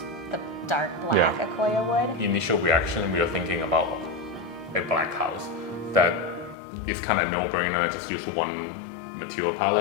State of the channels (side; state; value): right; drops out; at 6.6 s